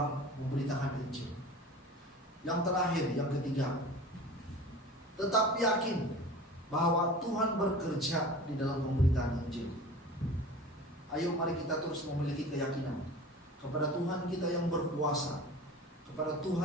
memberitakan Injil. Yang terakhir, yang ketiga, tetap yakin bahwa Tuhan bekerja di dalam pemberitaan Injil. Ayo mari kita terus memiliki keyakinan kepada Tuhan kita yang berkuasa, kepada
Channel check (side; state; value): both; normal; correlation 0.38